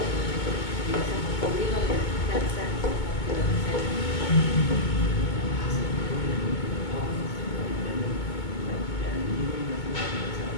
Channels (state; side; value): late; right; 2.2 ms